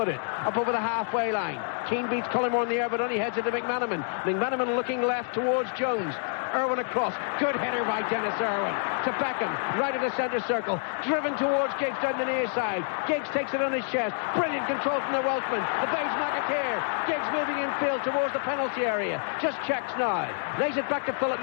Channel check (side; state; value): right; silent; 60 dB below the other